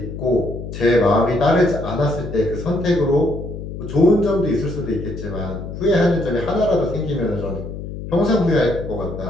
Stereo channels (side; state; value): left; noise; hum, 9 dB below the sound